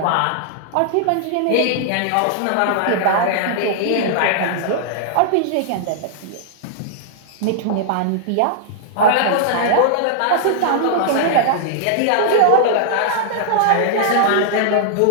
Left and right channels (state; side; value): different; both; correlation -0.01